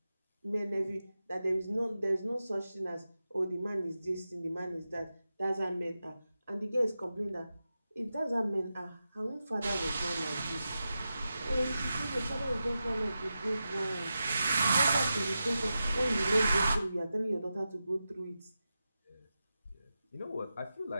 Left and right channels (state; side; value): inverted; both; correlation -0.91